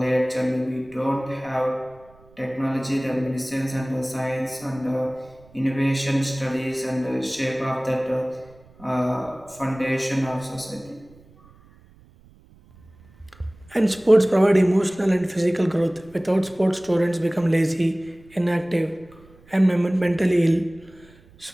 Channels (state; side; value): noise; right; rumble, 26 dB below the sound